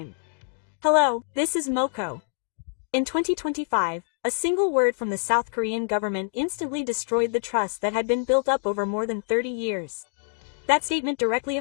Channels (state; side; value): silent; right; digital silence